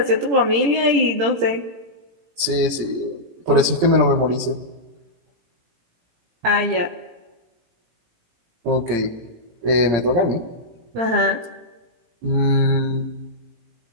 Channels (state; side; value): late; left; 17 ms